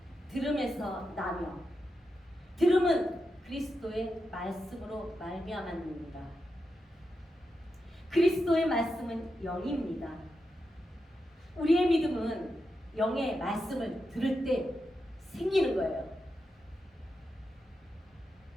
들음에서 나며 들음은 그리스도의 말씀으로 말미암았느니라. 그리스도의 말씀은 영입니다. 우리의 믿음은 영의 말씀을 들을 때 생기는 거예요.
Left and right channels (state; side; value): normal; both; correlation 0.87